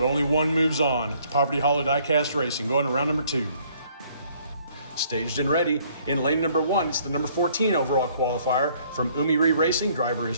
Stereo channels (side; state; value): both; inverted; correlation -0.62